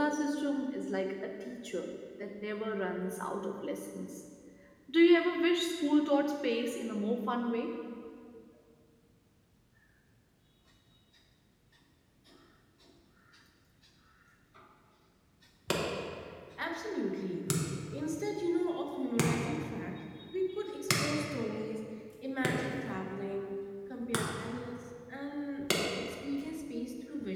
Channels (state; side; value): identical; both; correlation 1.00